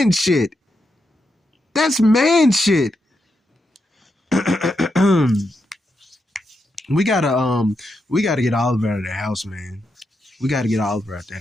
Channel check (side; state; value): both; normal; correlation 0.84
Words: shit. We gotta get Oliver out of the house, man. We gotta get Oliver out